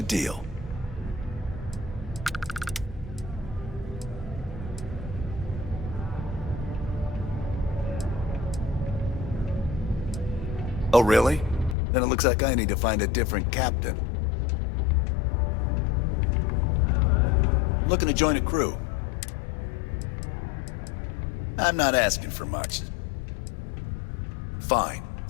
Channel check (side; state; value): right; drops out; at 11.8 s